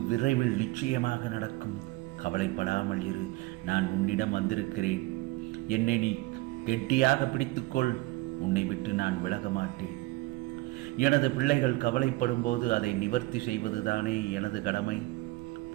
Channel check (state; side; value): quieter; left; 20.2 dB